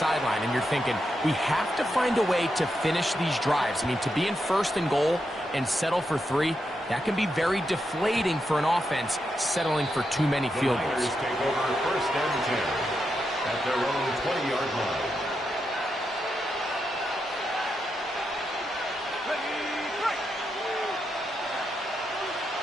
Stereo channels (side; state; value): both; normal; correlation 0.85